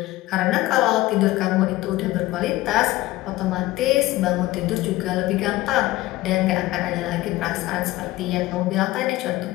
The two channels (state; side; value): quieter; right; 17.6 dB